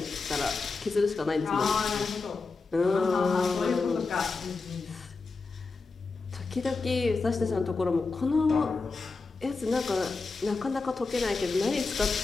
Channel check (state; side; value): quieter; right; 4.1 dB